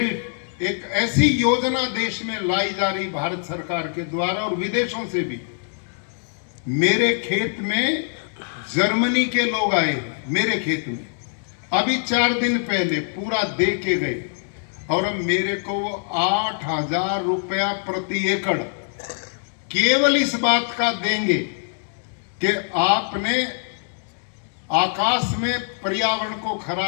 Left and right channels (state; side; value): silent; right; digital silence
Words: एक ऐसी योजना देश में लाई जा रही भारत सरकार के द्वारा और विदेशों से भी। मेरे खेत में जर्मनी के लोग आए, मेरे खेत में अभी 4 दिन पहले पूरा दे के गए, और अब मेरे को वो 8,000 रुपया प्रति एकड़ केवल इस बात का देंगे कि आपने आकाश में पर्यावरण को